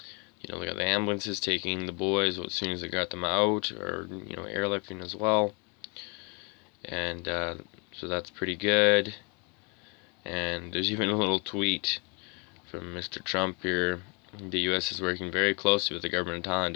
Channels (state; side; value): quieter; right; 33.0 dB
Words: They got the ambulances taking the boys as soon as they got them out, or airlifting as well. And so that's pretty good. And there's even a little tweet from Mr. Trump here. The U.S. is working very closely with the government of Thailand